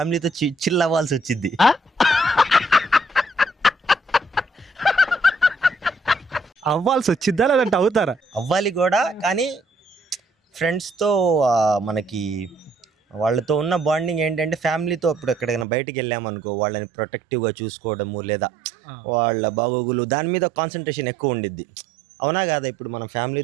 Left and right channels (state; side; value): drops out; left; at 15.7 s